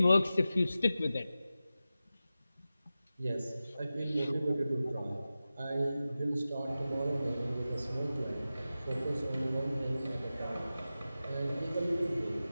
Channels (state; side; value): inverted; both; correlation -0.94